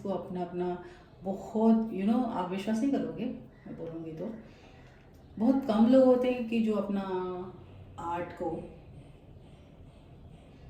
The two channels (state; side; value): identical; both; correlation 1.00